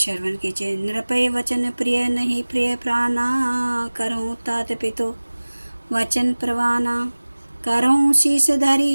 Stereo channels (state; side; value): inverted; both; correlation -1.00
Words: कीजिए। नृपय वचन प्रिय नहीं प्रिय प्राणा, करहूँ तात पितु वचन प्रवाना। करहूँ शीस